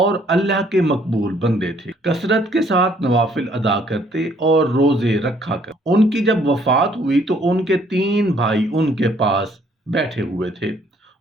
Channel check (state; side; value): normal; both; correlation 0.64